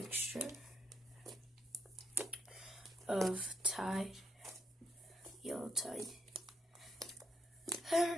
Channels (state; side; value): normal; both; correlation 0.74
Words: of Tide, Yellow Tide,